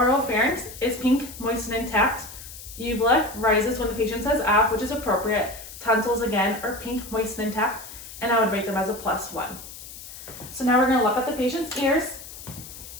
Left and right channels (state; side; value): noise; left; hiss, 14 dB below the sound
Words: is pink, moist, and intact. Uvula rises when the patient says ah, which is appropriate. Tonsils again are pink, moist, and intact, and I would rate them as a +1. So now we're going to look at the patient's ears.